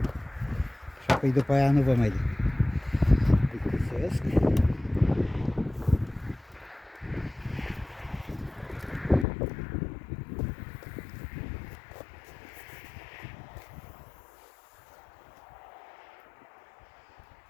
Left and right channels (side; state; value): right; drops out; at 9.2 s